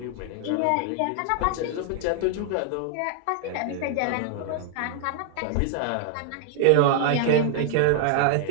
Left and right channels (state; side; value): different; both; correlation 0.00